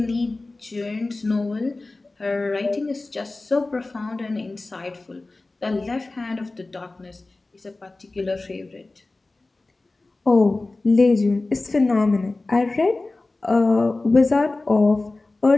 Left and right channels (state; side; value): quieter; right; 3.2 dB